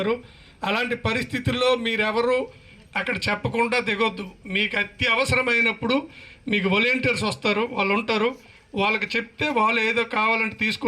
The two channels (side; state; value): both; identical; correlation 1.00